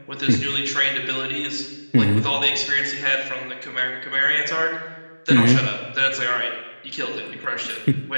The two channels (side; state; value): both; inverted; correlation -1.00